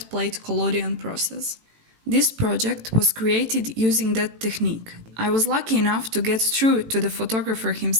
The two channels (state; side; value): late; left; 18 ms